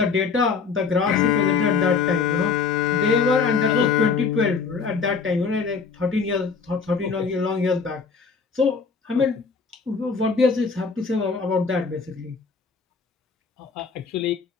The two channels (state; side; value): quieter; right; 5.2 dB